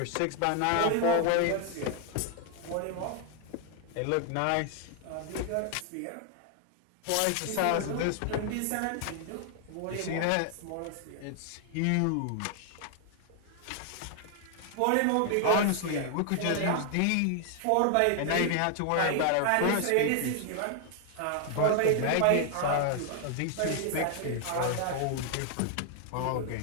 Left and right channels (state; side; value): different; both; correlation 0.00